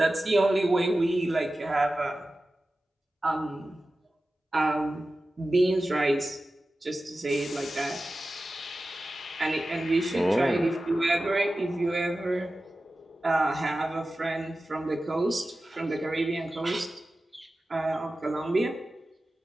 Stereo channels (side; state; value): both; normal; correlation 0.94